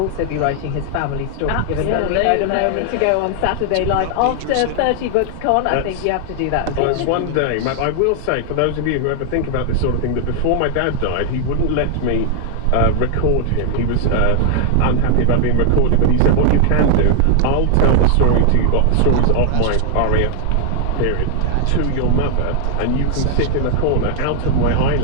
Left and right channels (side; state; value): both; different; correlation 0.00